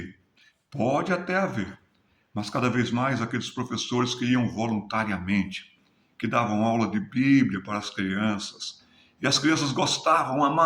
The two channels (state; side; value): identical; both; correlation 1.00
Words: pode até haver, mas cada vez mais aqueles professores que iam voluntariamente, que davam aula de Bíblia para as crianças, e as crianças gostavam,